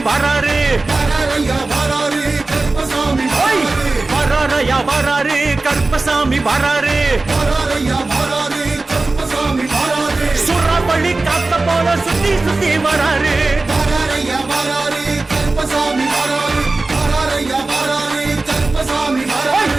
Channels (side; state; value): left; quieter; 3.3 dB